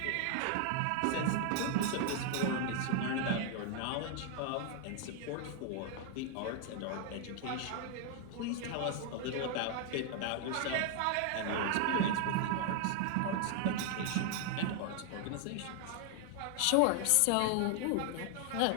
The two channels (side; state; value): both; different; correlation 0.00